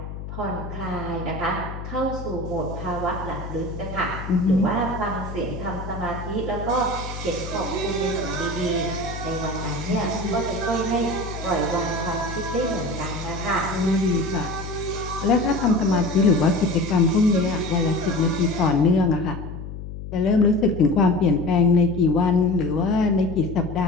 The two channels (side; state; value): left; noise; hum, 9 dB below the sound